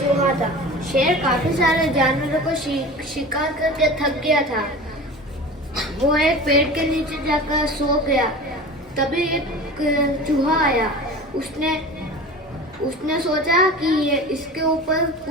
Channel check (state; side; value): normal; both; correlation 0.35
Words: चूहा था। शेर काफी सारे जानवरों को शिकार करके थक गया था। वो एक पेड़ के नीचे जाकर सो गया। तभी एक चूहा आया। उसने सोचा कि ये इसके ऊपर